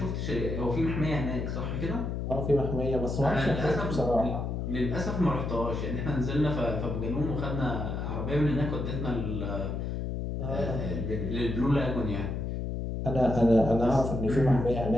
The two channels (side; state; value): left; noise; hum, 3 dB below the sound